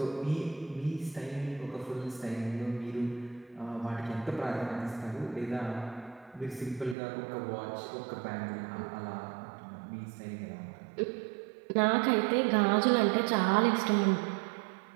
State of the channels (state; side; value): drops out; left; at 7.0 s